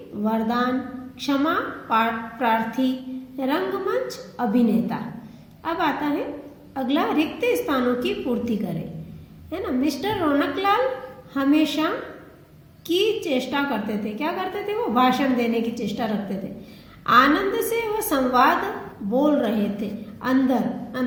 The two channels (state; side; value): identical; both; correlation 1.00